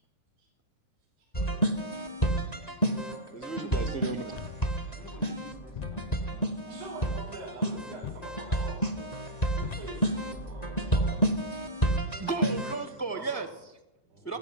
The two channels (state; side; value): late; right; 1.9 ms